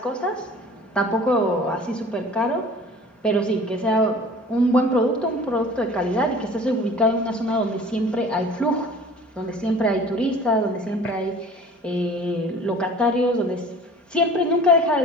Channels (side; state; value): both; normal; correlation 0.46